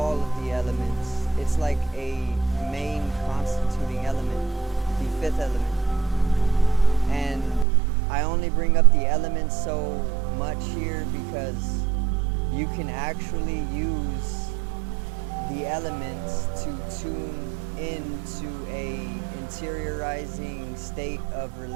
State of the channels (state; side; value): drops out; left; at 7.7 s